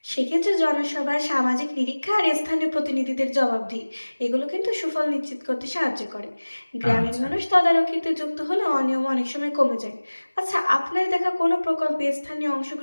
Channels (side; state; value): both; inverted; correlation -1.00